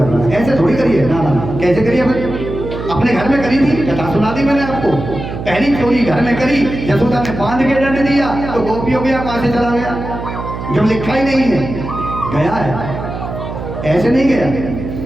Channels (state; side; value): noise; right; hum, 8 dB below the sound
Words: रहा है। ऐसे थोड़ी करिए, ना ना, कैसे करिए? अपने घर में करी थी, कथा सुना दी मैंने आपको। पहली चोरी घर में करी, यशोदा ने बांध के दंड दिया तो गोपी हो गया, कहां से चला गया, जब लिखा ही नहीं है, गया है, ऐसे नहीं गया।